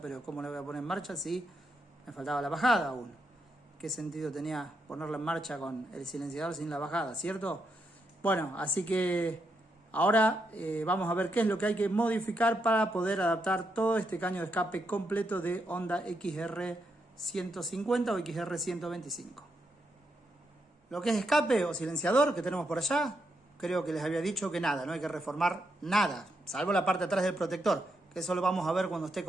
¿cómo la voy a poner en marcha si me faltaba la bajada aún? ¿Qué sentido tenía ponerla en marcha con el silenciador sin la bajada, cierto? Bueno, así que ahora vamos a ver qué es lo que hay que modificar para poder adaptar todo este caño de escape completo de Honda XR 150 o XR 125. Lo que es escape o silenciador que tenemos por allá, creo que les había dicho que nada, no hay que reformar nada, salvo la parte de atrás del protector, que eso lo vamos a ver cuando esté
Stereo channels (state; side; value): normal; both; correlation 0.81